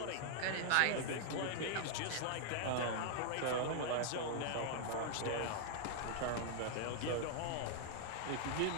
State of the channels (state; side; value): different; both; correlation 0.00